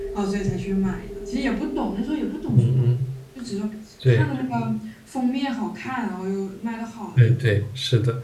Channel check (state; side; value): identical; both; correlation 1.00